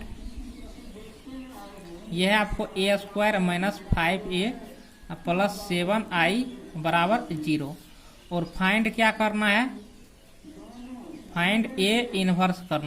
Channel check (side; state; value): both; identical; correlation 1.00